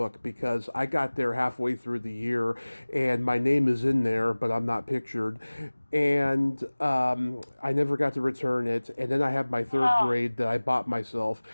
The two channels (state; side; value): inverted; both; correlation -1.00